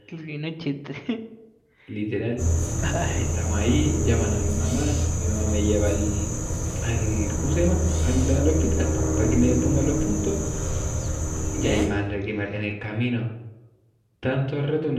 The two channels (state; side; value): identical; both; correlation 1.00